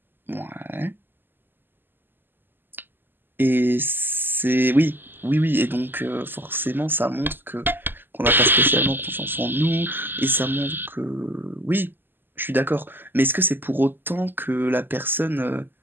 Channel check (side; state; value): left; late; 0.094 ms